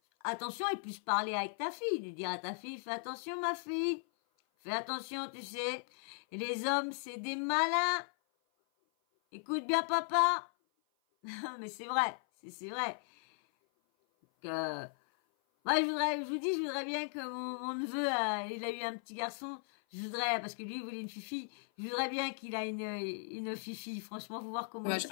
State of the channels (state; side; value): silent; right; 53 dB below the other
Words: attention et plus parler avec ta fille, de dire à ta fille, fais attention ma fille, fais attention, tu sais, et les hommes c'est des malins. Écoute bien papa. Mais c'est vrai, c'est vrai que moi, je voudrais bien que mon neveu, il a eu un petit garçon. Je voudrais, parce que lui, il voulait une fifi. Je voudrais bien qu'il a une fifi. Franchement, faut voir comment.